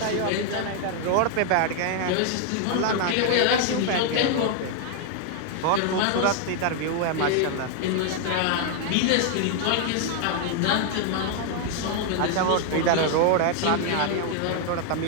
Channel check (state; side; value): different; both; correlation 0.00